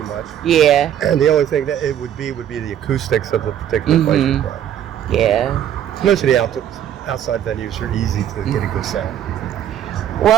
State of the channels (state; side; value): quieter; left; 10.4 dB